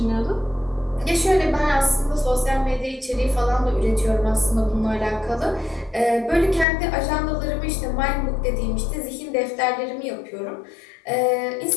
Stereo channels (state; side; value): drops out; right; at 6.7 s